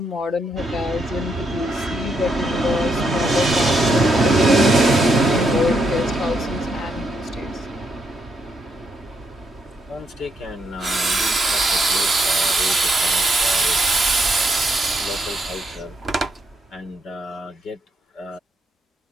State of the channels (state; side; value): normal; both; correlation 0.77